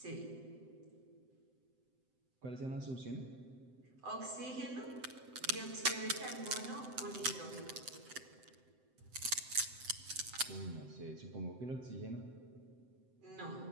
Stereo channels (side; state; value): left; late; 7.8 ms